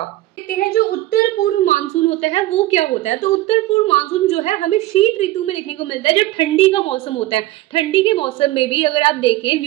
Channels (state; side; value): quieter; left; 16.5 dB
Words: देखते हैं जो उत्तर पूर्व मानसून होता है वो क्या होता है। तो उत्तर पूर्व मानसून जो है हमें शीत ऋतु में देखने को मिलता है, जो ठंडी का मौसम होता है। ठंडी के मौसम में भी अगर आप देखें,